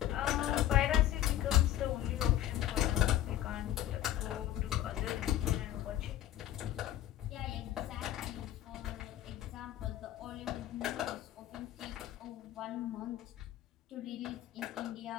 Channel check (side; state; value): right; quieter; 12.8 dB